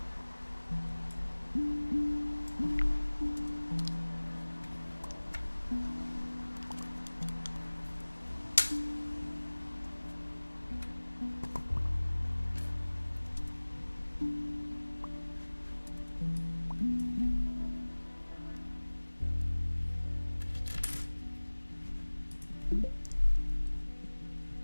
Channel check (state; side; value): inverted; both; correlation -1.00